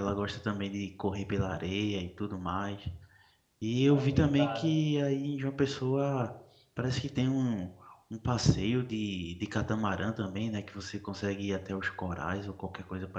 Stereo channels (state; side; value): identical; both; correlation 1.00